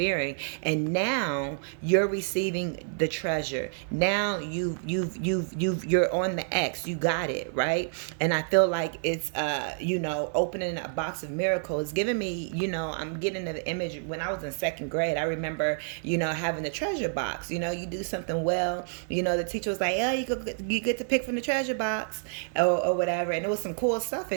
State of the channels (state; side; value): silent; left; digital silence